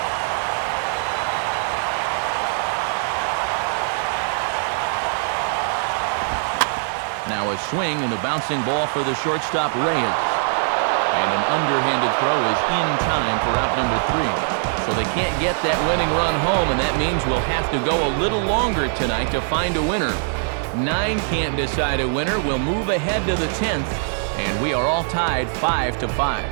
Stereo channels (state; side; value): silent; left; digital silence